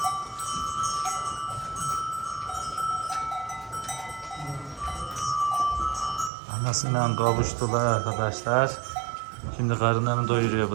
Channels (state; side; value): drops out; left; at 6.3 s